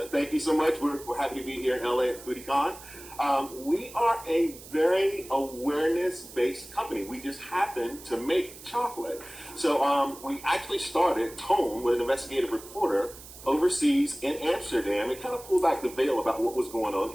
Thank you so much. We're happy to be here in LA at Foodie Con. We are a very awareness-based company. We just happen to make chocolate. So we actually started Tone with an investigative reporter overseas in Amsterdam and kind of pulled back the veil about what was going on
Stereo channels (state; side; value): noise; right; hiss, 17 dB below the sound